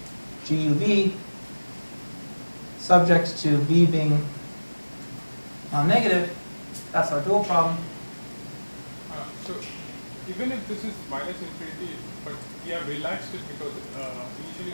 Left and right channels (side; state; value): both; inverted; correlation -1.00